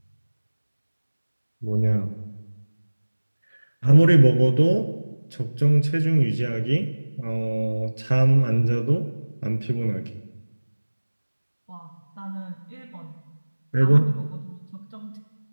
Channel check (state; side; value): inverted; both; correlation -1.00